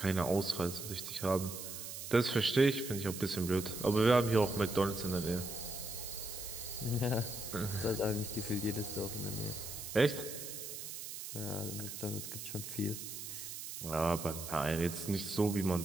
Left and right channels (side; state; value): right; noise; hiss, 8 dB below the sound